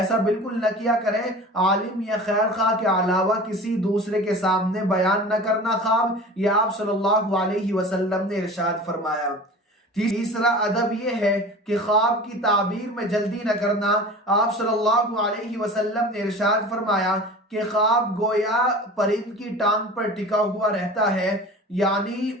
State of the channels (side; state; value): both; normal; correlation 0.38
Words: بالکل نہ کیا کریں۔ عالم یا خیر خواہ کے علاوہ کسی دوسرے کے سامنے بیان نہ کرنا خواب، یہ آپ صلی اللہ علیہ وسلم نے ارشاد فرمایا۔ تیسرا ادب یہ ہے کہ خواب کی تعبیر میں جلدی نہ کرنا۔ آپ صلی اللہ علیہ وسلم نے ارشاد فرمایا کہ خواب گویا پرند کی ٹانگ پر ٹکا ہوا رہتا ہے، یعنی